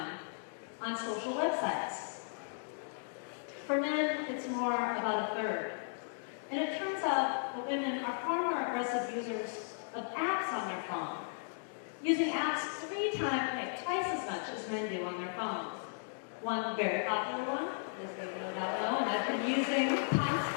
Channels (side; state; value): right; silent; digital silence